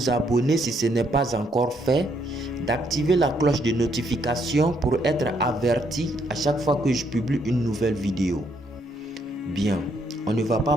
abonner si ce n'est pas encore fait, d'activer la cloche de notification pour être averti à chaque fois que je publie une nouvelle vidéo. Bien, on ne va pas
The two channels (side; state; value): both; normal; correlation 0.72